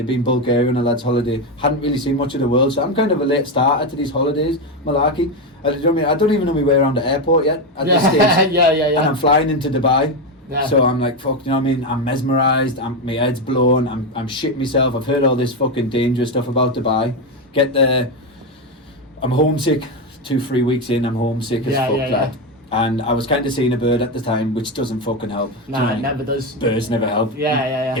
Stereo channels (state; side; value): normal; both; correlation 0.10